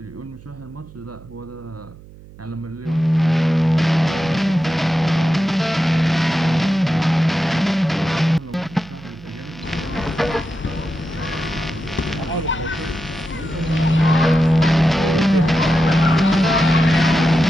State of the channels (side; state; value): right; noise; hum, 20 dB below the sound